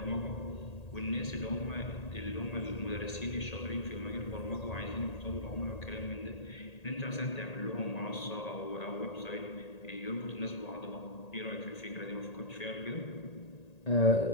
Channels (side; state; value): right; late; 1.8 ms